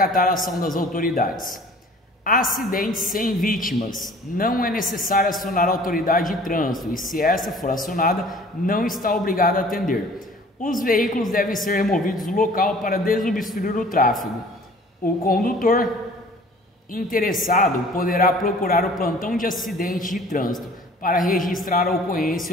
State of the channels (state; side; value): normal; both; correlation 0.50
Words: ação das autoridades. Acidentes sem vítimas. Não é necessário acionar a autoridade de trânsito e, se essa for acionada, não está obrigada a atender. Os veículos devem ser removidos do local para desobstruir o tráfego. O condutor interessado poderá procurar o plantão de acidente de trânsito para registrar a ocorrência